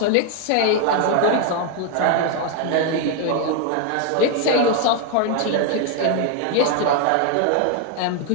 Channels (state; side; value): different; both; correlation 0.01